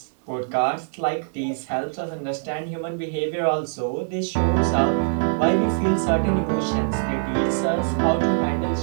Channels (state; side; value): silent; left; 63 dB below the other